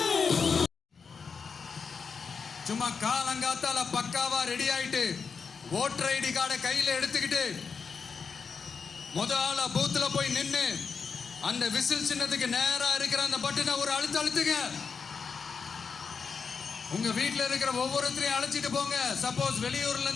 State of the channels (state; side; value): quieter; right; 5.6 dB